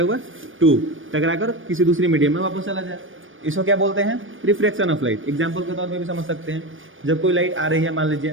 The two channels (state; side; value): late; left; 0.57 ms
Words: हुआ 2, टकरा कर किसी दूसरी मीडियम में वापस चला जाए, इसको क्या बोलते हैं, रिफ्रैक्शन ऑफ लाइट। एग्जाम्पल के तौर पे भी समझ सकते हैं, जब कोई लाइट आ रही है, मान